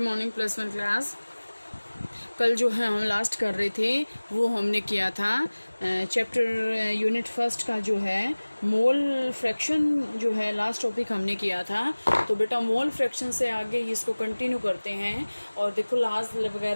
plus one class. कल जो है हम लास्ट कर रहे थे वो हमने किया था चैप्टर यूनिट फर्स्ट का जो है मोल फ्रैक्शन जो है लास्ट टॉपिक हमने किया था। तो बेटा मोल फ्रैक्शन से आगे इसको कंटिन्यू करते हैं। और देखो लास्ट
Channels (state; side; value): inverted; both; correlation -1.00